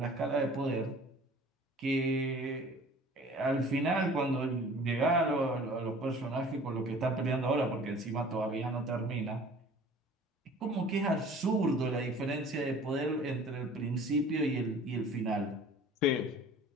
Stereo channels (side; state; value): both; normal; correlation 0.47